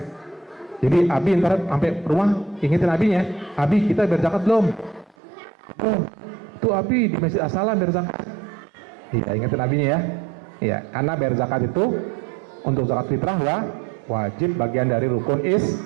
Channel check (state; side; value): drops out; left; at 5.2 s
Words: Jadi abi ntar sampai rumah ingetin abinya, abi kita bayar zakat belum? Oh, tuh abi di Masjid As-Salam bayar zakat. Iya, ingetin abinya ya. Iya, karena bayar zakat itu untuk zakat fitrah wajib, bagian dari rukun